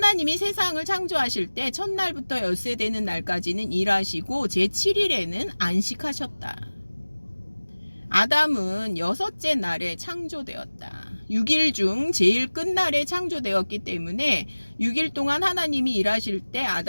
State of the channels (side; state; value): both; inverted; correlation -1.00